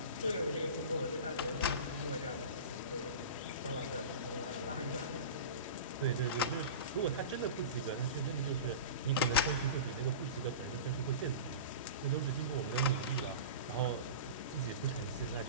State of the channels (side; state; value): both; inverted; correlation -0.31